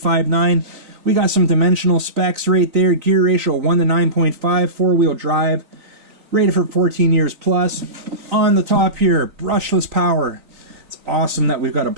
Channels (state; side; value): late; left; 3.9 ms